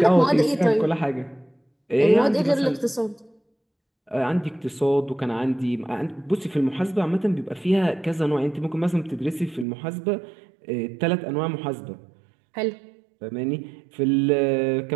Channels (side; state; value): left; drops out; at 9.7 s